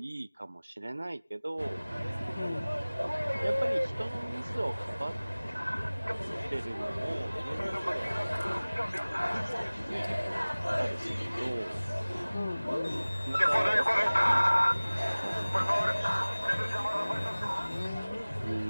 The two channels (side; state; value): both; inverted; correlation -0.99